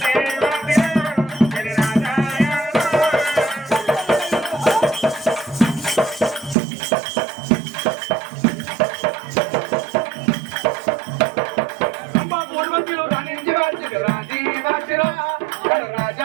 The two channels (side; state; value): left; drops out; at 6.6 s